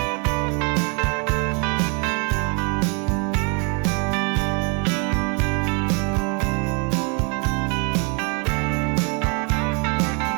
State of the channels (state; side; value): quieter; left; 34.4 dB